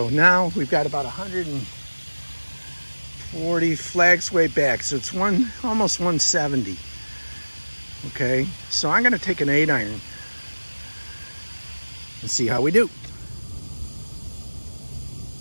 now we've got about 140 flags way back, so it's almost 170. Okay, so I'm gonna take an 8-iron and see how we do.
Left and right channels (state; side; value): inverted; both; correlation -1.00